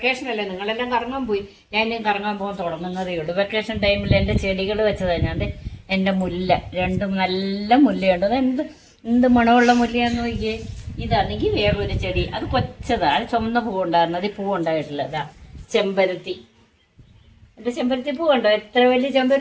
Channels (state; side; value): identical; both; correlation 1.00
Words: അല്ലേ, നിങ്ങളെല്ലാം കറങ്ങാൻ പോയി, ഞാൻ ഇനിയും കറങ്ങാൻ പോകാൻ തുടങ്ങുന്നതേ ഉള്ളൂ. വെക്കേഷൻ ടൈമിൽ എൻ്റെ ചെടികൾ വെച്ചതാണ് ഞാൻ. എൻ്റെ മുല്ല, രണ്ടും നല്ല മുല്ലയുണ്ട്. അത് എന്ത് മണമുള്ള മുല്ലയാന്ന് നോക്കിയേ. ഇതാണെങ്കിൽ വേറൊരു ചെടി, അത് കൊച്ചതാണ്, അത് ചുമന്ന പൂവുണ്ടായിരുന്നു, അത് പൂവുണ്ടായിട്ടില്ല. അതാ ചെമ്പരത്തി. എൻ്റെ ചെമ്പരത്തി പൂവുണ്ടോ? എത്ര വലിയ